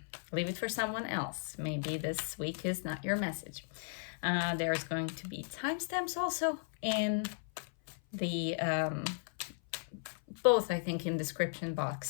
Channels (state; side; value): silent; right; 54 dB below the other